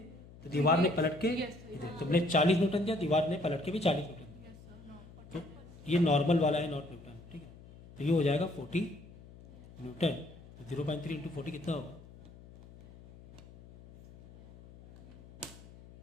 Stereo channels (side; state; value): left; noise; hum, 20 dB below the sound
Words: तो दीवार ने पलट के इधर तुमने 40 न्यूटन दिया, दीवार ने पलट के भी 40 न्यूटन दिया, तो ये नॉर्मल वाला है, नॉट न्यूटन, ठीक है। तो ये हो जाएगा 40 न्यूटन, तो 0.3 इंटू 40 कितना होगा,